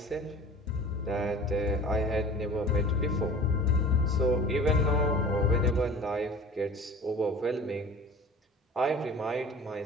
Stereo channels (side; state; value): both; normal; correlation 0.42